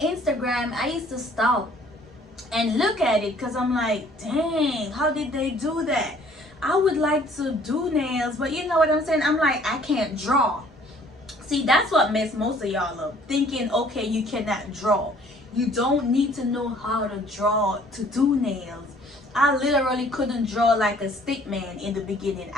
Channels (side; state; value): both; normal; correlation 0.57